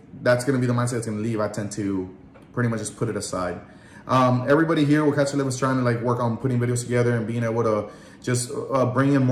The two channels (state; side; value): identical; both; correlation 1.00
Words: that's going to be the mindset that's going to leave, I tend to pretty much just put it aside. Everybody here with Catch a Live is trying to like work on putting videos together and being able to just bring in